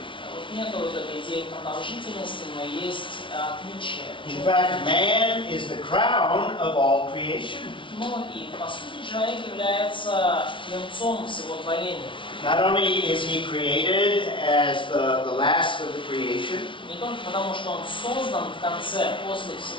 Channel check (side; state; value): right; late; 0.25 ms